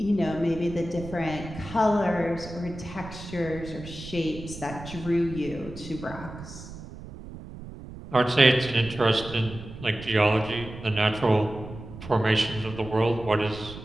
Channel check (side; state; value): right; noise; rumble, 13 dB below the sound